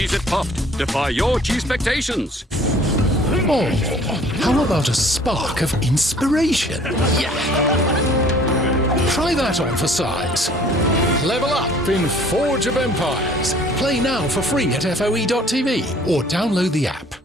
Puffed. Defy your cheese expectations. Oh, how about a spark of inspiration? Yeah. Try that on for size. Level up in Forge of Empires. Play now for free at FOE.tv or download the app.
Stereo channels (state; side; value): normal; both; correlation 0.54